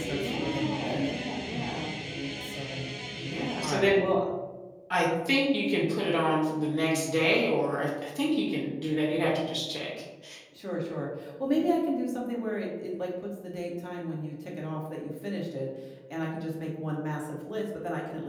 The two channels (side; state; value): both; identical; correlation 1.00